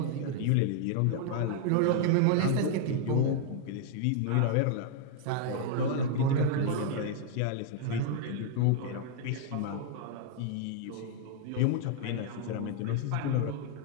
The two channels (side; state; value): both; different; correlation 0.00